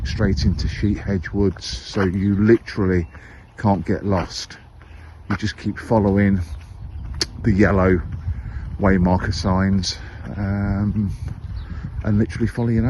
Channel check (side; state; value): both; identical; correlation 1.00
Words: straight into Hedges Woods. So you literally can't get lost. You just keep following the yellow way marker signs and literally follow your